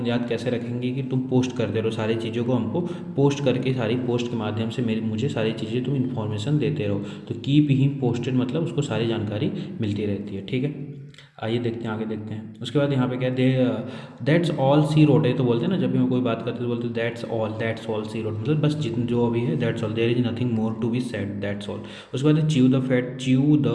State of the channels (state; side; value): identical; both; correlation 1.00